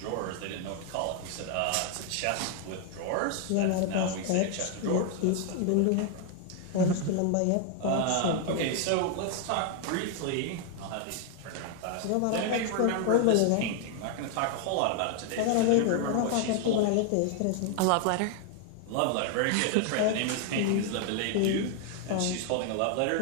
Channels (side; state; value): both; different; correlation 0.00